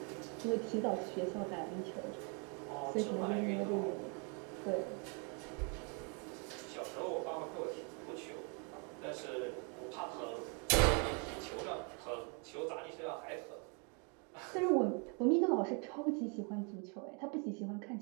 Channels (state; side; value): quieter; left; 35.7 dB